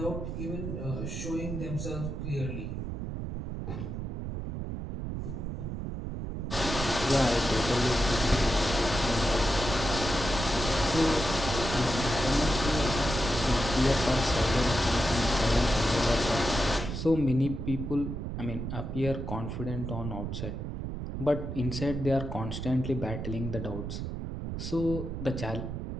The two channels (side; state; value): right; noise; rumble, 5 dB below the sound